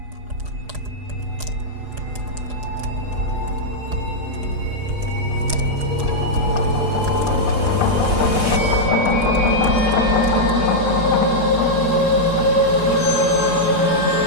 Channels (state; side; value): late; left; 4.8 ms